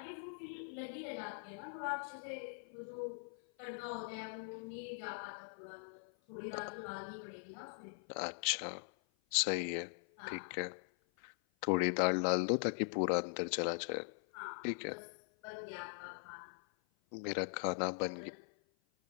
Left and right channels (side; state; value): right; silent; 50 dB below the other